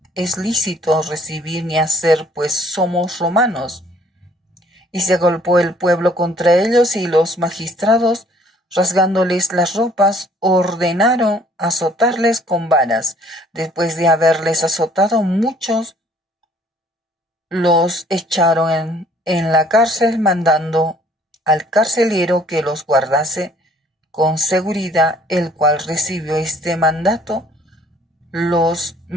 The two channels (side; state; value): both; normal; correlation 0.58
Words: es lícito recibir ni hacer, pues somos romanos. Y se agolpó el pueblo contra ellos, y los magistrados, rasgándoles las ropas, ordenaron azotarles con varas. Después de haberles azotado muchos, los echaron en la cárcel, mandando al carcelero que los guardase con seguridad, el cual recibió este mandato, los